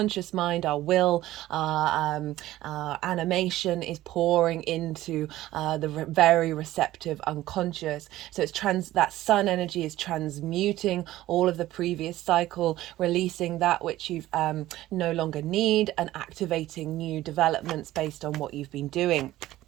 mind, our will, our animation is pouring into the very receptive unconscious. So it's that sun energy is transmuting all of the previous cycle, releasing that which you've no longer need, and activating new developments based on what you've been doing.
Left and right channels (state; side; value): quieter; left; 15.4 dB